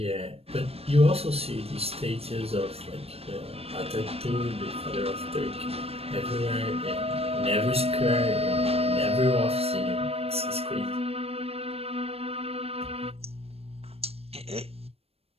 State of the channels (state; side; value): late; left; 0.29 ms